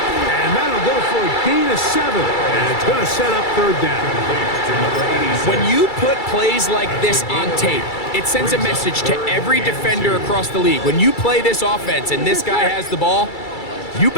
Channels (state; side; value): late; right; 2.3 ms